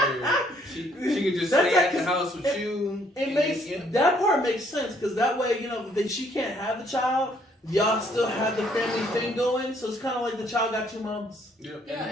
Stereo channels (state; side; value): normal; both; correlation 0.66